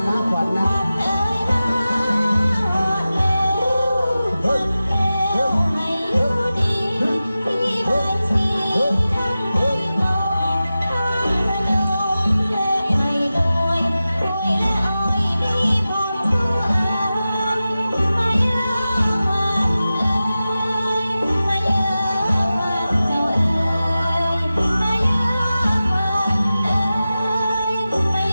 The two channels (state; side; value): inverted; both; correlation -0.95